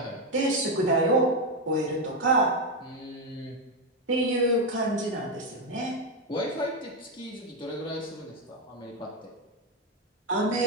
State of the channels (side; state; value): both; normal; correlation 0.07